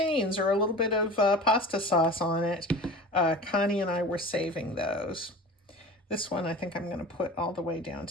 or a little bit of pasta sauce on it, Connie and I were saving those. This one I think I'm going to put all the way down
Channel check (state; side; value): normal; both; correlation 0.36